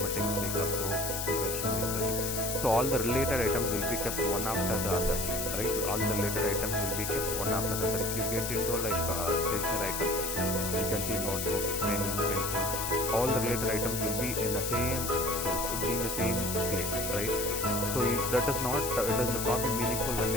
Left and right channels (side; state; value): left; noise; hiss, 3 dB below the sound